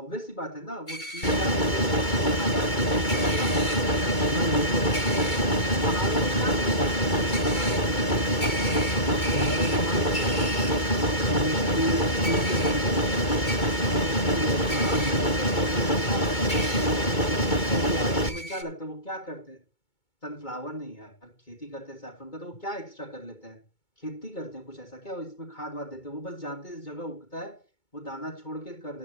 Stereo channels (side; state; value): right; late; 2.2 ms